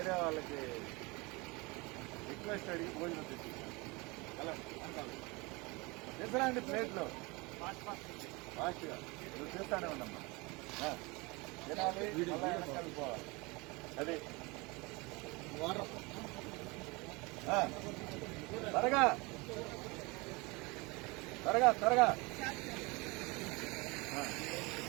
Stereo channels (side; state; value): left; quieter; 25.7 dB